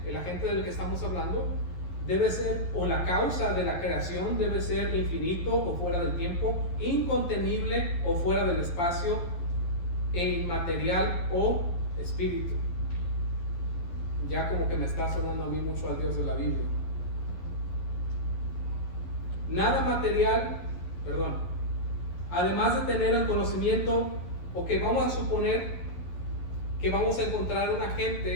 el agente del que estamos hablando, debe ser, o la causa de la creación debe ser infinito o fuera del tiempo, incontenible o fuera del espacio, e inmaterial o espíritu. Ya como que me está sonando a mí mucho al Dios de la Biblia. Nada material, además de tener el conocimiento, o que vamos a suponer que vamos a encontrar un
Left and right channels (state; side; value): late; right; 11 ms